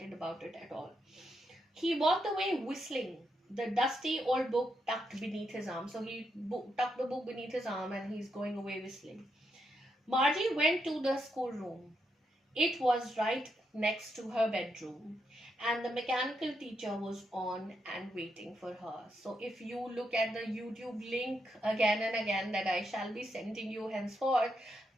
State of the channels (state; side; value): normal; both; correlation 0.81